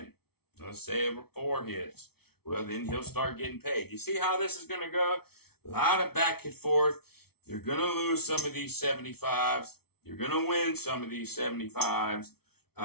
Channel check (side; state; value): right; late; 0.95 ms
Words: Let's say 4 hits. Well, then he'll start getting paid. You see how this is going to go? A lot of back and forth. You're going to lose some of these 75s. You're going to win some of these 75s.